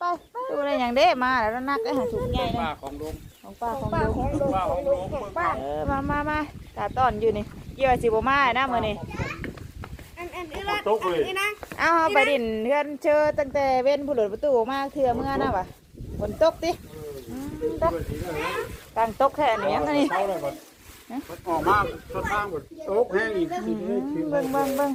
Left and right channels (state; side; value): identical; both; correlation 1.00